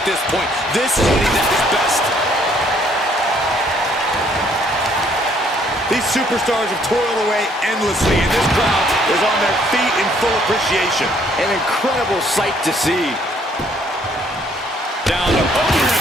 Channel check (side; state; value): both; normal; correlation 0.64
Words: this point. This is when he's at his best. These superstars have toiled away endlessly, and this crowd is on their feet in full appreciation. An incredible sight to see. Down to opponent,